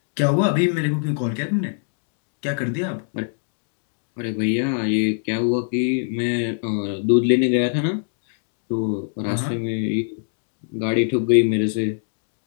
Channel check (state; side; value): silent; right; digital silence